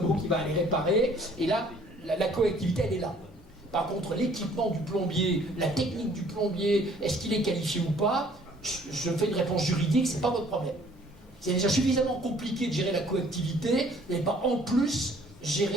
qui va aller réparer, et là, la coactivité, elle est là. Par contre, l'équipement du plombier, la technique du plombier, est-ce qu'il est qualifié ou pas? Je fais une réponse juridique, c'est pas votre problème. C'est déjà suffisamment compliqué de gérer la coactivité, vous n'allez pas en plus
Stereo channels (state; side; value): normal; both; correlation 0.58